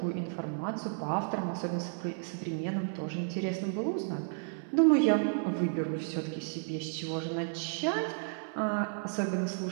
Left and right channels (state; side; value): silent; left; 56 dB below the other